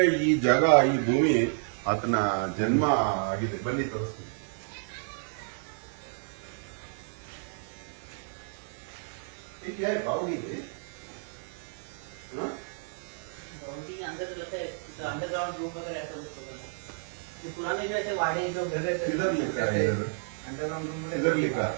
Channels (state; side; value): silent; left; digital silence